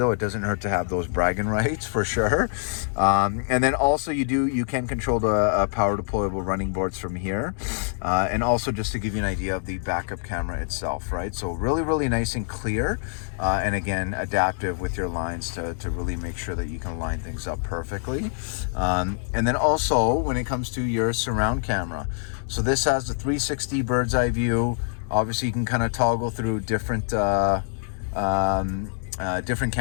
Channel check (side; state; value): right; silent; 62 dB below the other